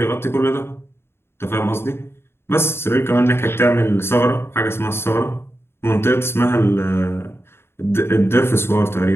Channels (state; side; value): late; right; 0.12 ms